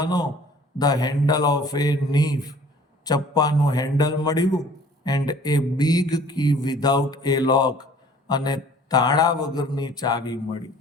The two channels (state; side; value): normal; both; correlation 0.52